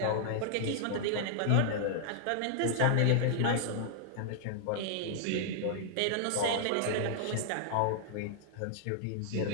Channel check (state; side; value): different; both; correlation -0.01